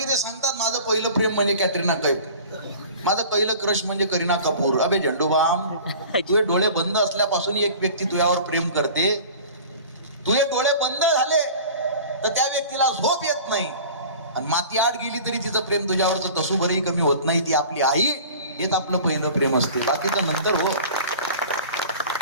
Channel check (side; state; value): both; inverted; correlation -0.41